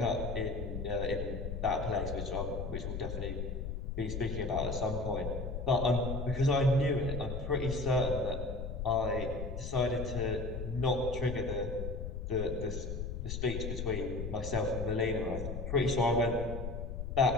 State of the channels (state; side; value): noise; left; rumble, 5 dB below the sound